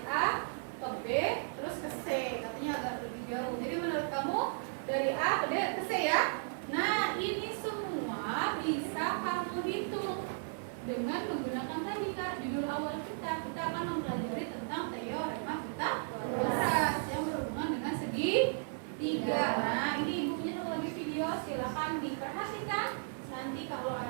A ke B terus ke C. Katanya agak lebih jauh. Jadi menurut kamu dari A ke D ke C ya? Nah, ini semua bisa kamu hitung dengan menggunakan tadi Kak, judul awal kita akan mempelajari tentang teorema Pythagoras yang berhubungan dengan segitiga. Nah, ini ibu punya satu lagi video, silakan diperhatikan. Nanti kalau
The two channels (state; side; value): silent; left; 54 dB below the other